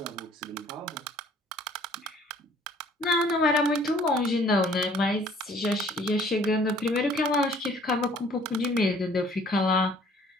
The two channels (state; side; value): normal; both; correlation 0.56